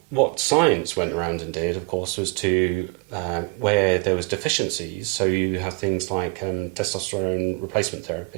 what science went around and did, of course, was to where there was deficiencies. So you have things like testosterone replacement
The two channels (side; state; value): left; quieter; 28.3 dB